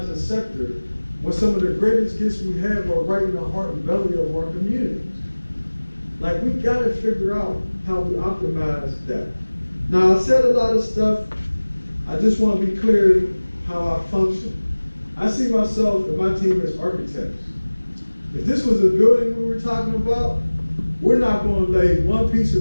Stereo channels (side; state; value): both; inverted; correlation -1.00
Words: a sector when some of the greatest gifts we have are right in the heart and belly of our communities? Like, we got to figure out how we optimize that. Now, I said a lot of stuff. I just want to be clear how I function. I see myself and my team as architects. If this was a building we were talking about, we're not going to lay one piece